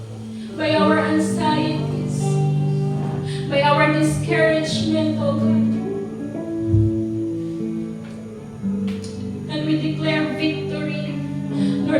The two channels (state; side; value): identical; both; correlation 1.00